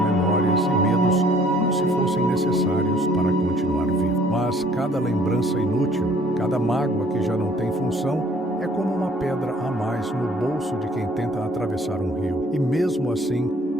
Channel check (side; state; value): both; normal; correlation 0.59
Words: memórias e medos como se fossem necessários para continuar vivo. Mas cada lembrança inútil, cada mágoa que já não tem função, é como uma pedra a mais no bolso de quem tenta atravessar um rio. E mesmo assim,